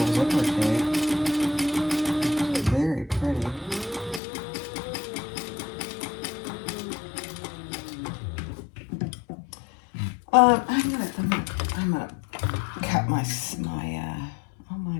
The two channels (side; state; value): right; drops out; at 4.2 s